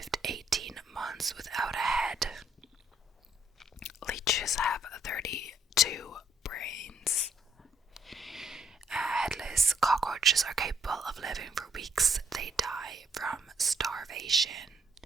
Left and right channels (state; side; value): normal; both; correlation 0.67